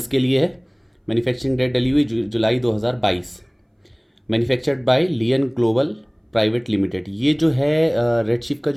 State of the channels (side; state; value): both; identical; correlation 1.00